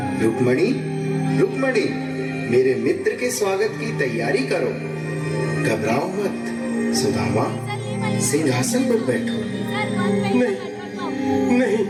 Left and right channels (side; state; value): both; identical; correlation 1.00